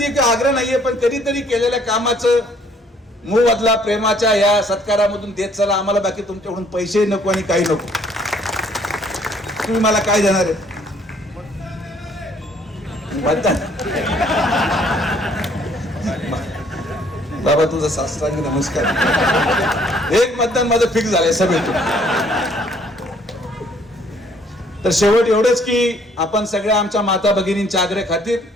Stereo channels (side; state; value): both; normal; correlation 0.62